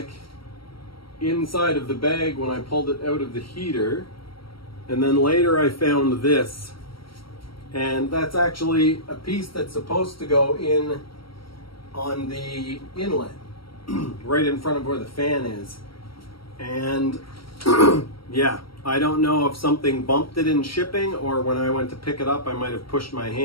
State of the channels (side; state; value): right; late; 0.75 ms